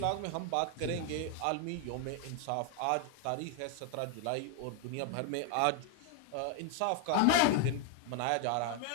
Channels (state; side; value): different; both; correlation 0.01